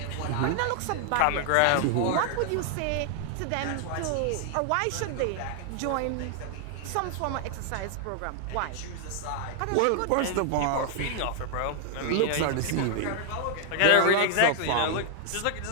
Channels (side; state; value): both; different; correlation 0.00